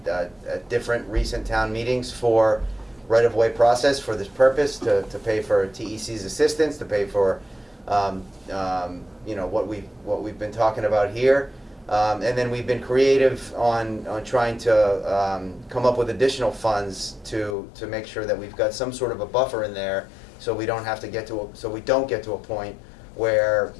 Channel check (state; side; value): drops out; right; at 17.6 s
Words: different recent town meetings for right-of-way process for this purpose, to pay for TEC's assistance, to pay for what we've been talking about here. And then we've been creative on trying to come up with additional funds to make sure that we've got some sort of a buffer in there, so we don't get to a point where